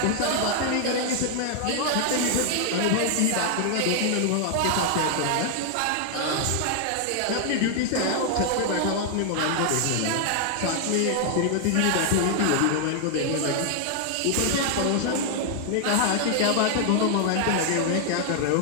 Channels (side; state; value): both; different; correlation 0.00